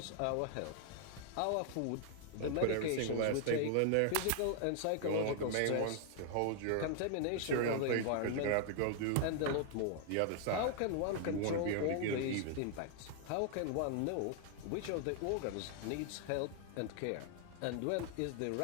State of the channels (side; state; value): both; different; correlation 0.00